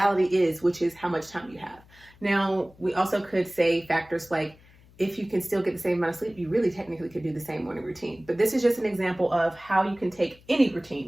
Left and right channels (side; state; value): left; noise; hum, 26 dB below the sound